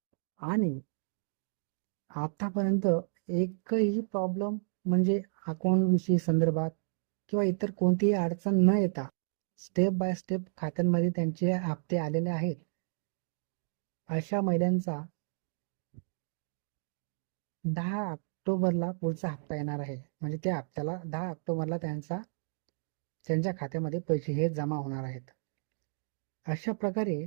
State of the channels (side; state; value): left; silent; digital silence